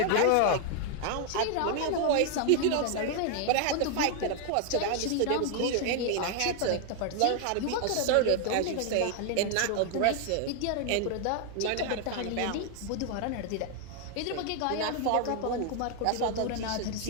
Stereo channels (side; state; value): both; different; correlation 0.00